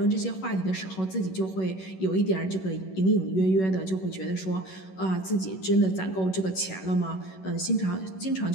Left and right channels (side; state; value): right; late; 11 ms